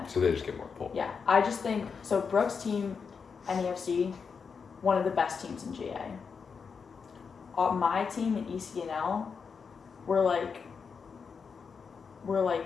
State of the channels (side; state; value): right; quieter; 5.8 dB